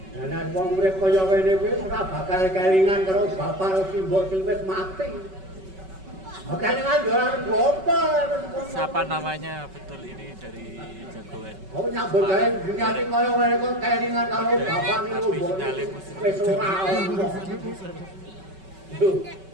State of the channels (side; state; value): left; late; 5.3 ms